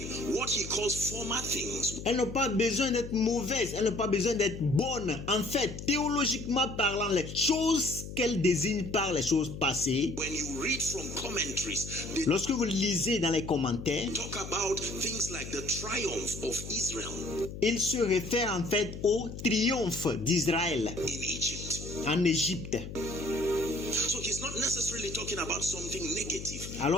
what he calls former things. Elles n'ont pas besoin d'être mauvaises, elles n'ont pas besoin d'être bonnes. En fait, théologiquement parlant, les choses qu'elles désignent par les choses passées, When you read from commentaries, they lorsque vous lisez dans les commentaires, talk about things like the triumph of Israel il se réfère en fait au triomphe d'Israël in Egypt. en Égypte. So he's not necessarily talking about something negative.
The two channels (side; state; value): left; noise; hum, 10 dB below the sound